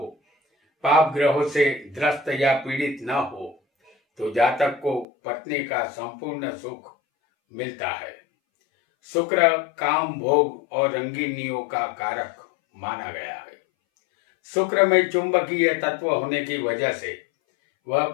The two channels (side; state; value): right; drops out; at 5.1 s